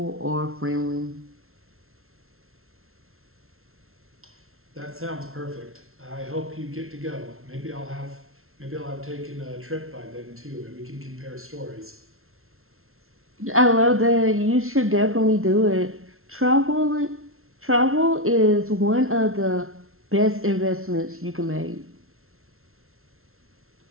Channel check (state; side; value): late; left; 0.62 ms